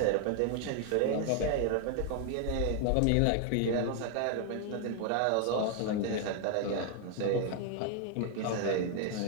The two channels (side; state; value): both; different; correlation 0.00